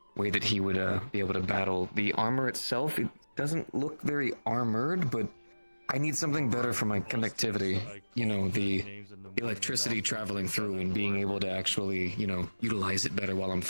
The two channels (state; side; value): inverted; both; correlation -1.00